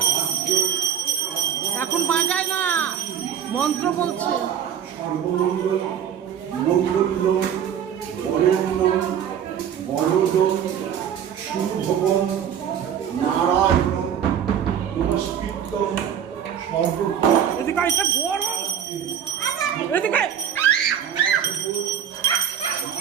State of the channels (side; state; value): left; quieter; 8.9 dB